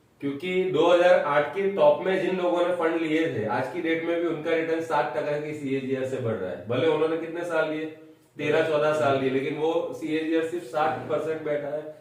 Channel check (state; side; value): identical; both; correlation 1.00